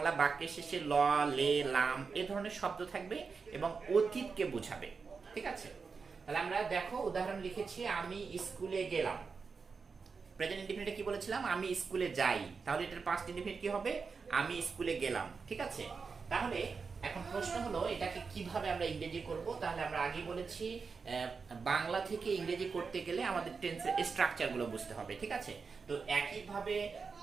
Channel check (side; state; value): left; quieter; 5.1 dB